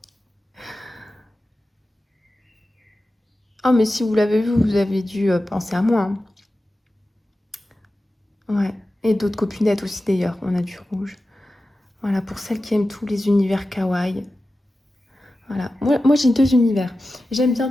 Oh, mais si vous l'avez vu, vous avez dû penser à moi. Hein. Ouais. Et d'autres copinettes aussi d'ailleurs. On a du rouge. Voilà, pour celles qui aiment tous les univers kawaii. Voilà. Moi j'ai 2 univers. J'aime bien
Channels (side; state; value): both; normal; correlation 0.93